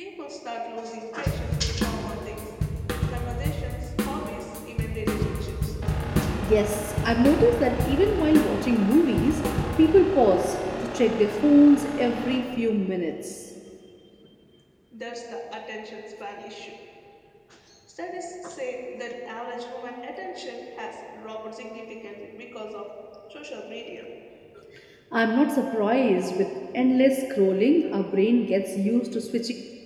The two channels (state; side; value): identical; both; correlation 1.00